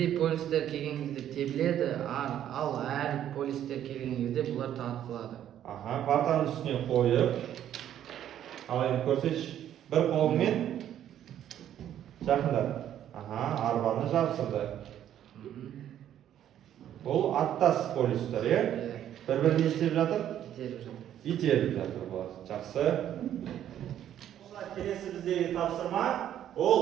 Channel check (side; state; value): left; quieter; 10.9 dB